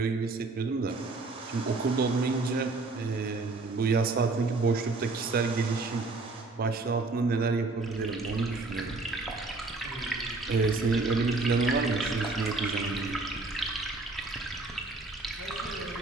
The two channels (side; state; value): left; quieter; 3.5 dB